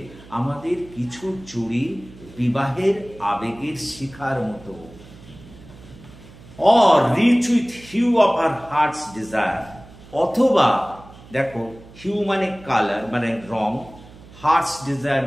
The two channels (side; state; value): right; noise; hum, 20 dB below the sound